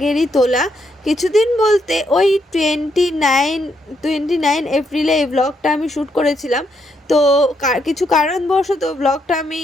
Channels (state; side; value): normal; both; correlation 0.77